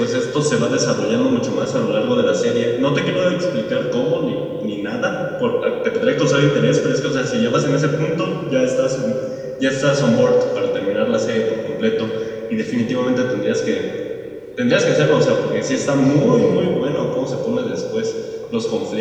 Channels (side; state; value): both; identical; correlation 1.00